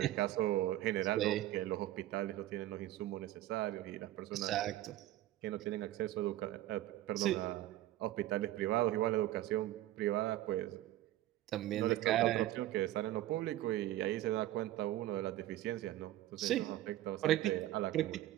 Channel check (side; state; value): left; quieter; 14.6 dB